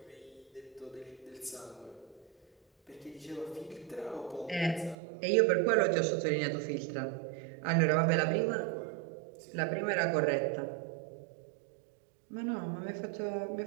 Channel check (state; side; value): drops out; left; at 5.0 s